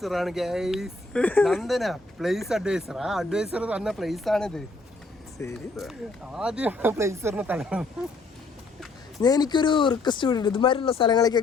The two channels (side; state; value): right; quieter; 3.3 dB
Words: ആണ് ഗൈസ്. Nandana place adviser. ആ അഡ്വൈസർ തന്ന പ്ലേസ് ആണിത്. ശരി, ആദ്യം പ്ലേസറിന് തരണം. എനിക്കൊരു റിക്വസ്റ്റ് കൂടി. ഇതുമാതിരിയുള്ള